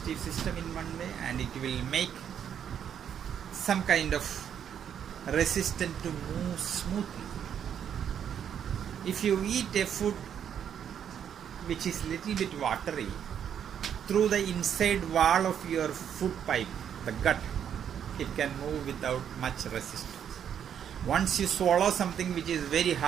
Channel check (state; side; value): quieter; left; 8.8 dB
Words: system in one way, and it will make some kind of resistance to move smoothly. If you eat a food which is little bit watery, through the inside wall of your food pipe, the gut, it can move without much resistance. Once you swallow something which is very